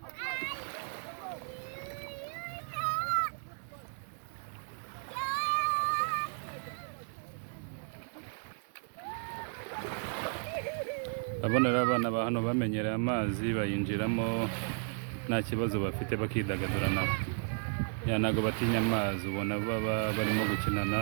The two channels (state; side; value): silent; left; 55 dB below the other